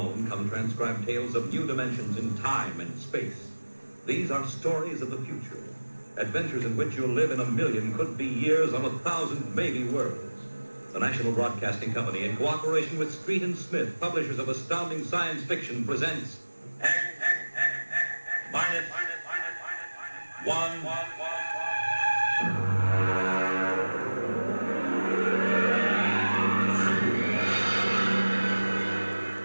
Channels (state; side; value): inverted; both; correlation -1.00